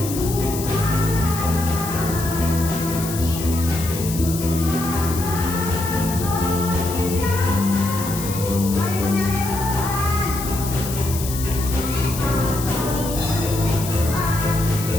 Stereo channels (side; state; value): left; noise; hiss, 8 dB below the sound